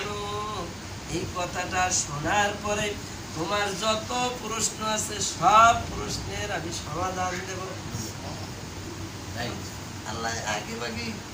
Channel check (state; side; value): identical; both; correlation 1.00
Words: এই কথাটা শোনার পরে তোমার যত প্রশ্ন আছে সব প্রশ্নের আমি সমাধান দেব। আল্লাহ আগে বাকি